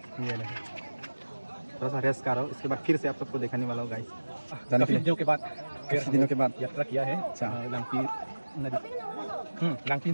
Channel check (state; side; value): inverted; both; correlation -1.00